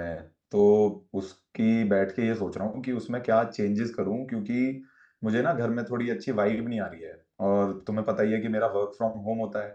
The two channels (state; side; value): identical; both; correlation 1.00